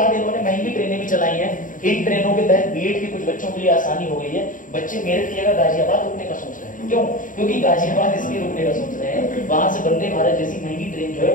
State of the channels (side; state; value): right; late; 0.38 ms